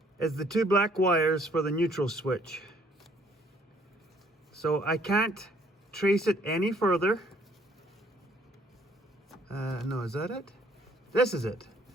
is the 2 black wires for the neutral switch. So I can't trace it any further. No, is that it? This is it.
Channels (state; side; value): normal; both; correlation 0.62